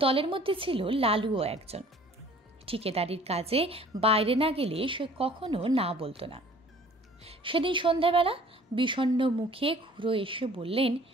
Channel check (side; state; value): both; normal; correlation 0.52